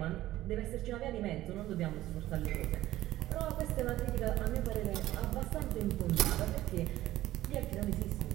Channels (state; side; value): quieter; left; 15.1 dB